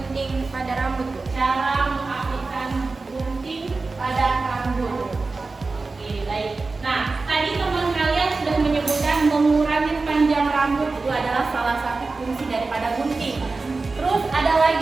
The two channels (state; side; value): quieter; left; 3.8 dB